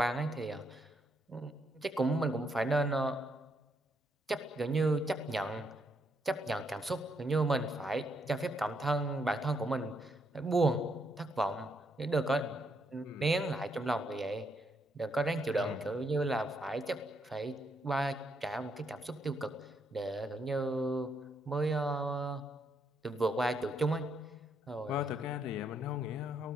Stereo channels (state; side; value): normal; both; correlation 0.76